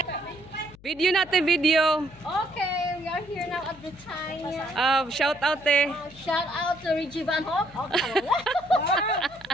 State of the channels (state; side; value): noise; left; hum, 23 dB below the sound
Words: Video natin, video. Okay, we are here now at Britannia. Shout out eh. Shout out to Reggie Van Hoff. Okay.